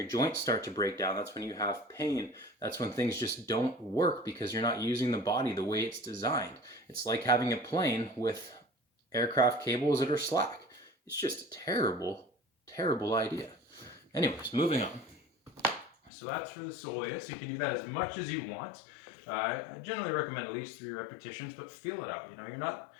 joints start to break down. That's when you have pain. That's when things just don't work because you're not using the body the way it's designed. It's like having a plane with aircraft cables that are slack. It's just a terrible, terrible idea. Anyways, moving on. So that's for the soleus. You can do that as much as you want. I generally recommend at least 3 repetitions, but feel it out. You know,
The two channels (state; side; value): drops out; right; at 16.1 s